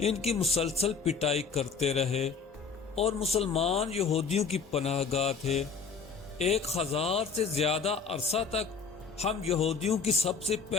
ان کی مسلسل پٹائی کرتے رہے، اور مسلمان یہودیوں کی پناہ گاہ تھے۔ 1000 سے زیادہ عرصہ تک ہم یہودیوں کی سب سے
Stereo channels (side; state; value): right; quieter; 5.5 dB